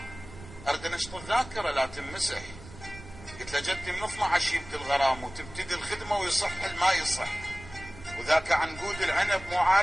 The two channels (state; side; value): noise; right; rumble, 16 dB below the sound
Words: ارد انشط الذاكرة لا تنمسح. قلت له جدي من 12 يبدي الغرام وتبتدي الخدمة ويصح ما يصح، وذاك عنقود العنب مو